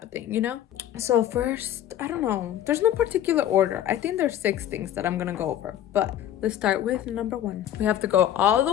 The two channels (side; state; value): right; quieter; 11.3 dB